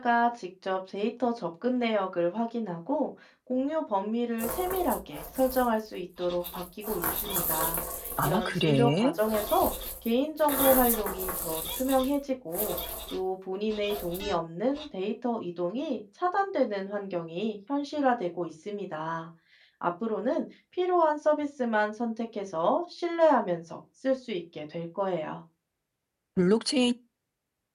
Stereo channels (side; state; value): both; identical; correlation 1.00